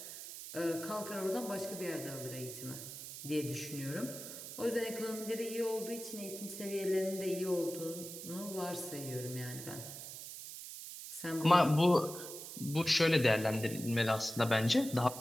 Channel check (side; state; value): right; noise; hiss, 10 dB below the sound